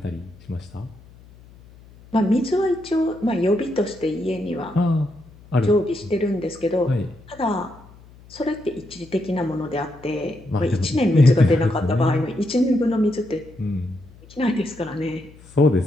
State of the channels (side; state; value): left; noise; hum, 23 dB below the sound